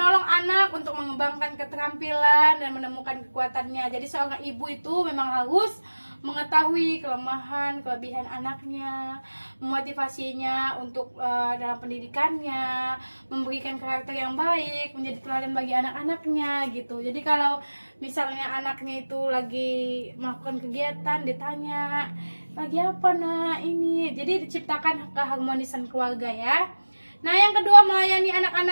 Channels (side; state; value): both; inverted; correlation -1.00